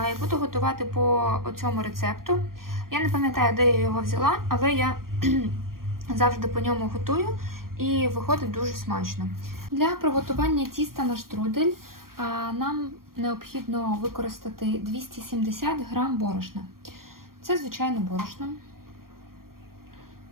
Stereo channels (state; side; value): late; left; 0.92 ms